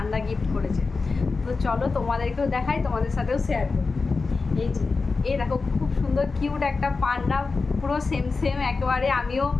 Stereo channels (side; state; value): right; quieter; 4.2 dB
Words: গিফট করেছে। তো চলো তোমাদেরকেও দেখাই, তোমাদের সাথেও শেয়ার করি। এই যে এই দেখো, খুব সুন্দর কিউট একটা পান্ডা, পুরো সেম সেম একেবারে। আমিও